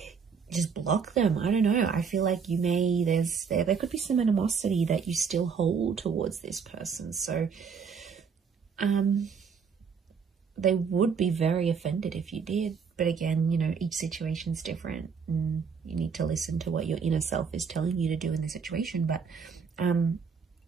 just block them. I don't know. I feel like you may, there could be some animosity that you still hold towards this person. So, they would be very offended if you did. But again, you know, each situation's different and you need to listen to what your inner self is telling you to do in the situation. But I'm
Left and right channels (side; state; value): left; quieter; 6.0 dB